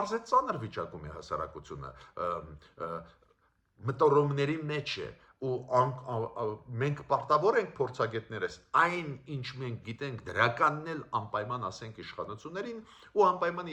է ծանր վիճակում է հասարակությունը, մտորումների մեջ է, ու մենք պարտավոր ենք փորձագետներս այն ինչ մենք գիտենք դրականն էլ անպայման ասենք իշխանություններին, ու անպայման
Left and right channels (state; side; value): identical; both; correlation 1.00